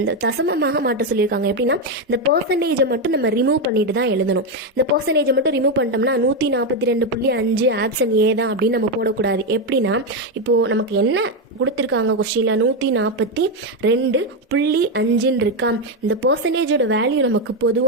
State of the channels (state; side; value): normal; both; correlation 0.07